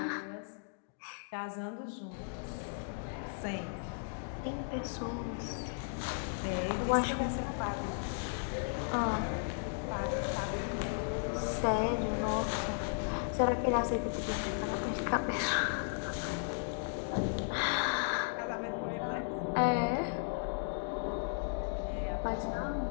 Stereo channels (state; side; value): silent; right; digital silence